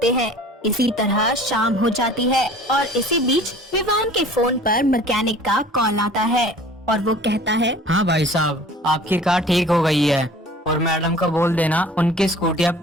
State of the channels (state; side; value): normal; both; correlation 0.47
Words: हैं। इसी तरह शाम हो जाती है और इसी बीच विवान के फोन पर मैकेनिक का कॉल आता है और वो कहता है, हाँ भाई साहब, आपकी कार ठीक हो गई है और मैडम को बोल देना उनकी स्कूटी अब